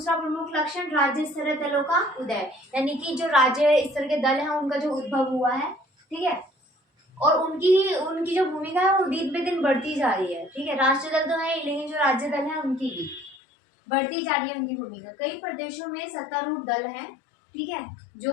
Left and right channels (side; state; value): right; drops out; at 13.4 s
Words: प्रमुख लक्षण राज्य स्तरीय दलों का उदय, यानी कि जो राज्य स्तर के दल हैं उनका जो उद्भव हुआ है। ठीक है, और उनकी उनकी जो भूमिका है वो दिन पे दिन बढ़ती जा रही है। ठीक है, राष्ट्रीय दल तो है ही, लेकिन जो राज्य दल है उनकी भी बढ़ती जा रही है उनकी भूमिका। कई प्रदेशों में सत्तारूढ़ दल है। ठीक है,